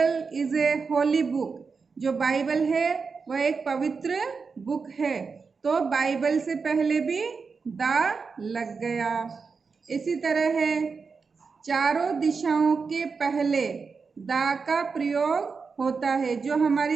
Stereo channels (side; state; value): left; quieter; 5.0 dB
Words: is a Holi book. जो बाइबल है वह एक पवित्र बुक है, तो बाइबल से पहले भी द लग गया। इसी तरह है चारों दिशाओं के पहले द का प्रयोग होता है। जो